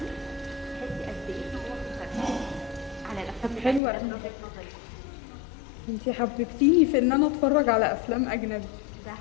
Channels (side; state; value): right; drops out; at 3.8 s